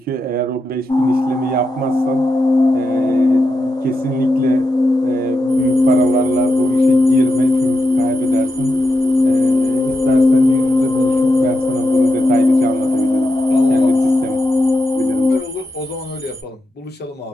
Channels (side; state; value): both; normal; correlation 0.86